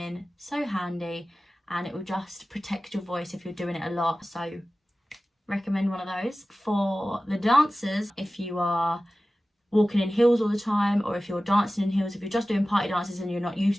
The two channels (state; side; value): normal; both; correlation 0.96